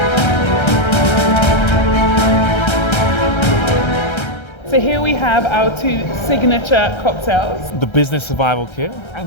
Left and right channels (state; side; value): late; right; 1.3 ms